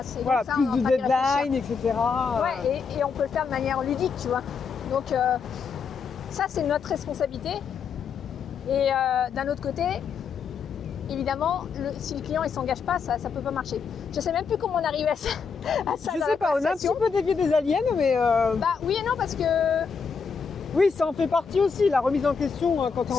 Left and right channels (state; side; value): quieter; right; 5.8 dB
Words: Et voilà, donc ça, plus de deadline, etc. Ouais, et on peut le faire de manière ludique, tu vois. Donc ça, c'est notre responsabilité. Et d'un autre côté, évidemment, si le client ne s'engage pas, ça ne peut pas marcher. Je ne sais même plus comment on arrive à ça. Je sais pas, on a un petit peu dévié des aliens, mais... oui et non, parce que... Oui, ça en fait partie aussi, la remise en question quand tu es